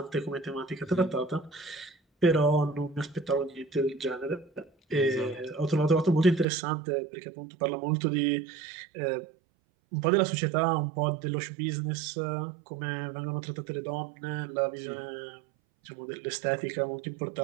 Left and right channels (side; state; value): left; drops out; at 6.5 s